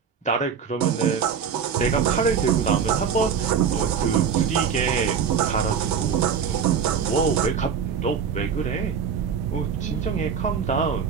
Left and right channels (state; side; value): quieter; left; 6.9 dB